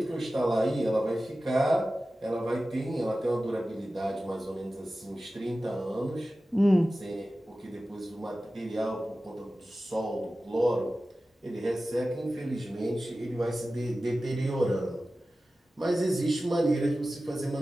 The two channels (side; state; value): both; normal; correlation 0.95